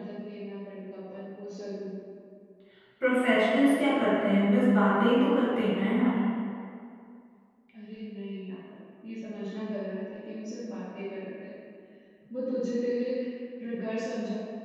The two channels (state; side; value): identical; both; correlation 1.00